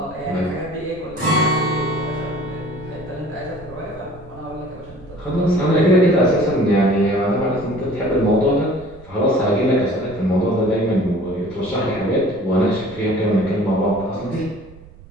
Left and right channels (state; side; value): noise; right; rumble, 20 dB below the sound